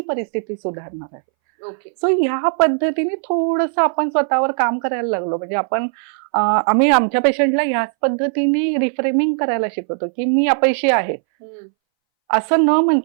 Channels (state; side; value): silent; left; 64 dB below the other